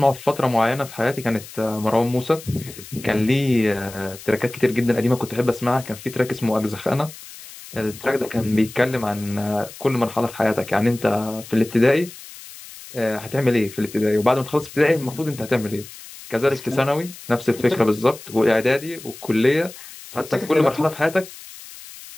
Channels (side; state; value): left; noise; hiss, 16 dB below the sound